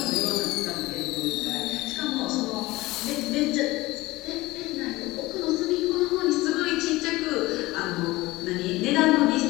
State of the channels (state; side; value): quieter; right; 19.8 dB